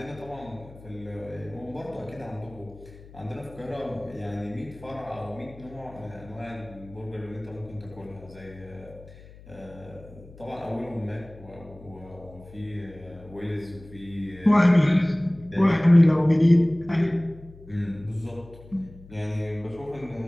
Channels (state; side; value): noise; left; hum, 20 dB below the sound